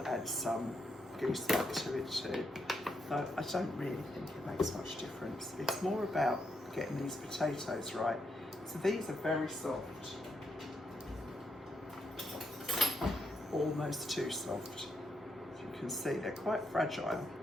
add some gooseneck to it too. Though I don't really think it makes much difference. It's more about getting these potatoes right. So these are very soft, almost too soft. As you can see, they're quite fragile.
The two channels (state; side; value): normal; both; correlation 0.80